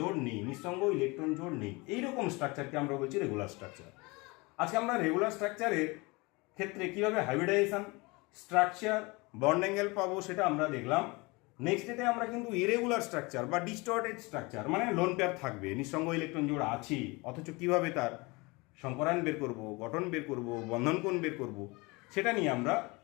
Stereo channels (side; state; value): right; quieter; 25.5 dB